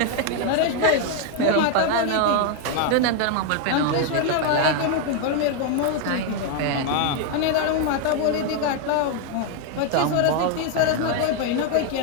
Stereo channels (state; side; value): different; both; correlation 0.01